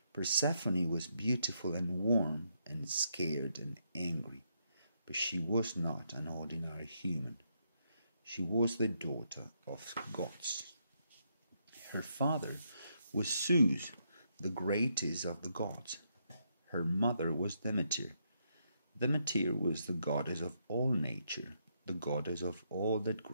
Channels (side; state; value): both; inverted; correlation -0.78